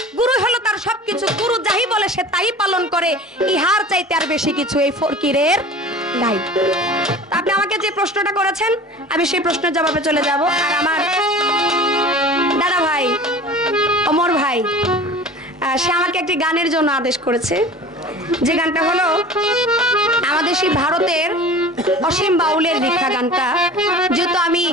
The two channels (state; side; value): normal; both; correlation 0.40